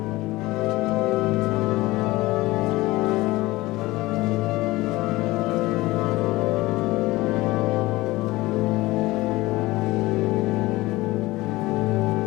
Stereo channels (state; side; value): quieter; right; 19.5 dB